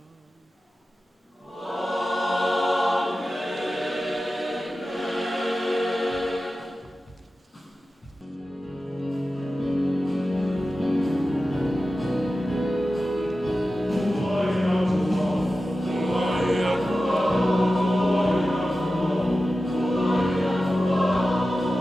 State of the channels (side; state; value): both; normal; correlation 0.94